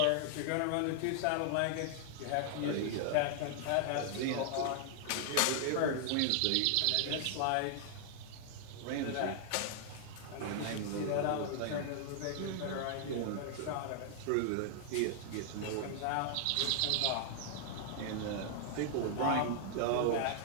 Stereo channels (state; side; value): different; both; correlation -0.01